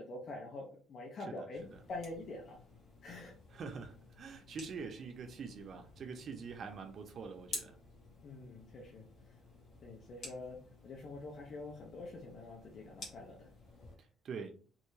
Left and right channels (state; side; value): normal; both; correlation 0.64